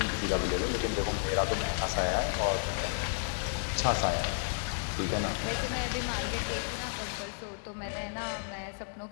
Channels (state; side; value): silent; right; digital silence